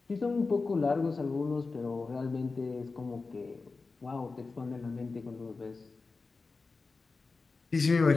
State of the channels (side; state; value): right; quieter; 4.0 dB